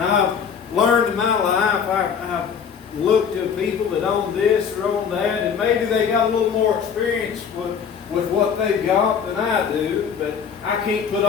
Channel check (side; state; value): right; quieter; 7.1 dB